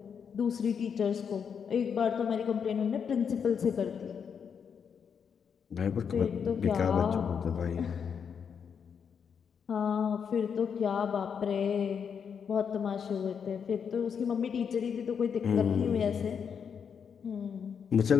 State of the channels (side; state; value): right; quieter; 7.0 dB